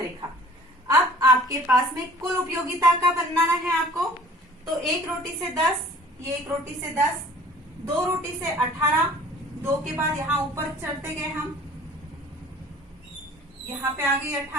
अब आपके पास में कुल उपयोगिता का बनाना है आपको। तो 1 रोटी से 10, ये 1 रोटी से 10, 2 रोटी से 18, 2 के बाद यहाँ ऊपर चढ़ते गए हम, यहाँ पे आ गई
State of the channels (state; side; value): normal; both; correlation 0.50